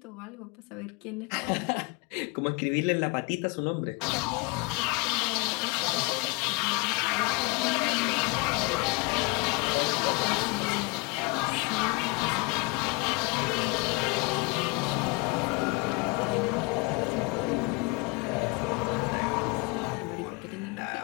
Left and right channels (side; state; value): right; quieter; 27.9 dB